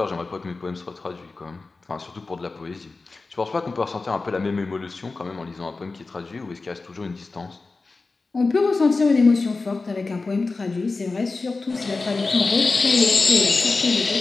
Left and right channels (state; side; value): quieter; right; 3.8 dB